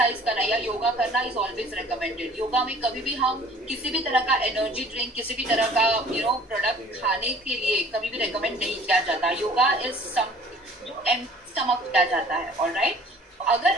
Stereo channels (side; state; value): both; normal; correlation 0.51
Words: करना या योगा करना इज ऑलवेज रिकमेंडेड। योगा में कभी भी हम किसी भी तरह का एनर्जी ड्रिंक, किसी भी तरह का प्रोडक्ट खाने के लिए कभी भी रिकमेंड नहीं किया जाता। योगा इज सम जो एम्प्टी स्टमक किया जाता है। ऑलराइट, अगर